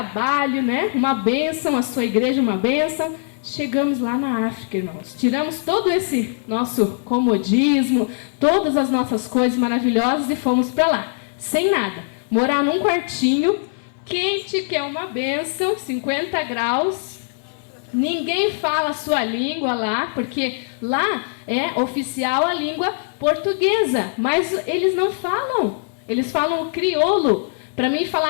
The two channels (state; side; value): silent; right; 65 dB below the other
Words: né? Uma bênção, a sua igreja uma bênção. Chegamos lá na África, irmãos. Tiramos todo esse nosso comodismo, todas as nossas coisas maravilhosas e fomos para lá, sem nada. Morar num quartinho, quente, que é uma bênção, 50 graus. Ninguém fala a sua língua lá, porque lá é oficial a língua portuguesa, mas eles não falam. Eles falam o crioulo. Para mim